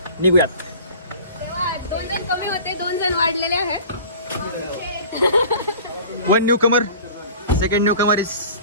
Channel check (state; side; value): inverted; both; correlation -0.43